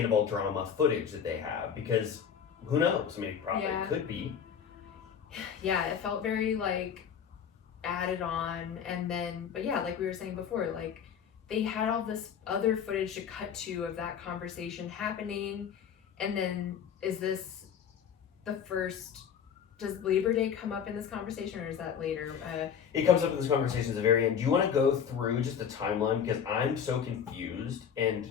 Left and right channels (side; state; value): right; quieter; 7.7 dB